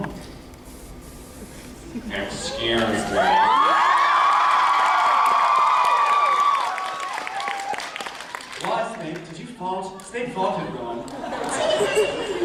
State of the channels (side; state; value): both; identical; correlation 1.00